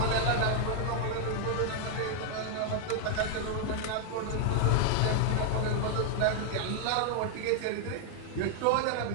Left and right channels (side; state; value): both; different; correlation 0.00